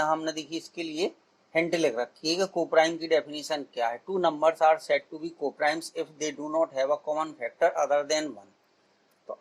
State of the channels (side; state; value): both; identical; correlation 1.00